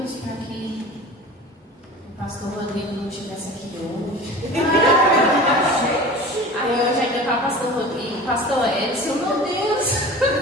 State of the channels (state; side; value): normal; both; correlation 0.37